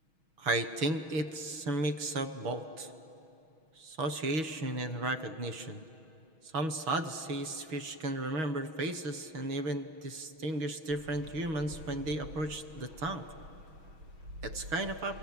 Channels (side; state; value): left; late; 6.3 ms